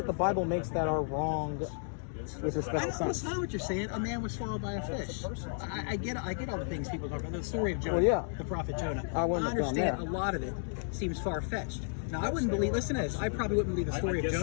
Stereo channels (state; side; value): silent; right; 56 dB below the other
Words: the Bible makes that are wrong with respect to That's science. not what you're saying. A man was swallowed by a fish. I get all the things people talk about. The story of Jonah, Well, yeah. the prophet Jonah. I wouldn't have gone understand there. a lot of it seems far-fetched. Now, I wouldn't believe, listen to this, I probably wouldn't believe the story of